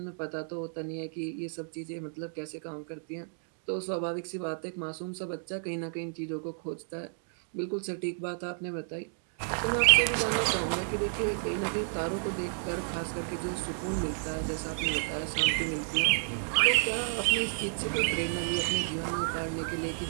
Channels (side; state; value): left; silent; digital silence